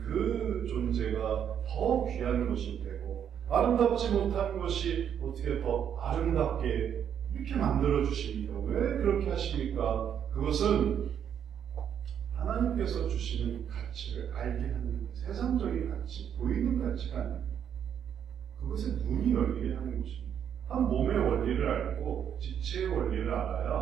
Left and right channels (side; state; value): left; quieter; 8.8 dB